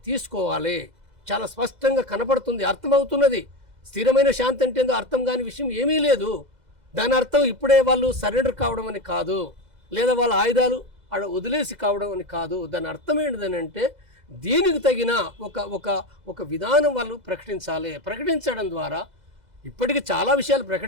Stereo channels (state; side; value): late; left; 2.0 ms